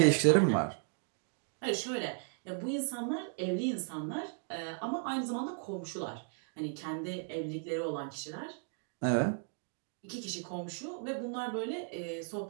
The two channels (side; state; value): left; silent; 54 dB below the other